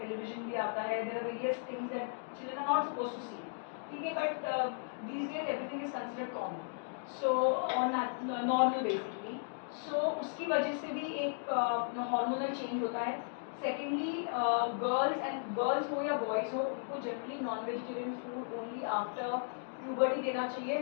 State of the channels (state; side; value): silent; right; digital silence